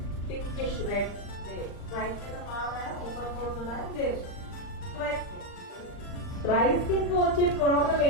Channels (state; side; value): late; right; 39 ms